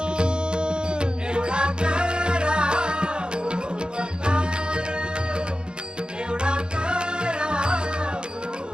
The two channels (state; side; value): late; left; 0.050 ms